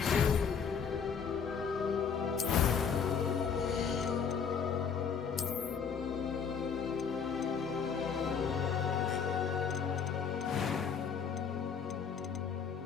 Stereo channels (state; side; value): quieter; right; 6.5 dB